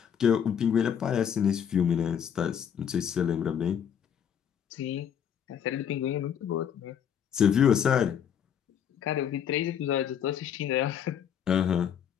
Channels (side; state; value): right; quieter; 8.5 dB